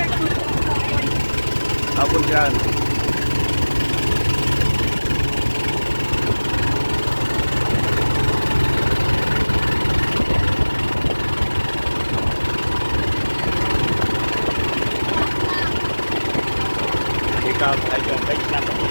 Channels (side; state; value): both; inverted; correlation -1.00